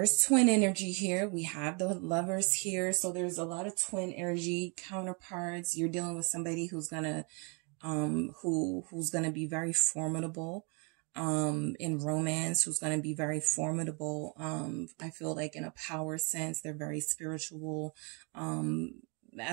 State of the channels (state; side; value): quieter; left; 34.4 dB